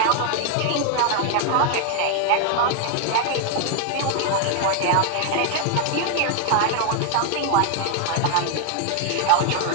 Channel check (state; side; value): different; both; correlation 0.00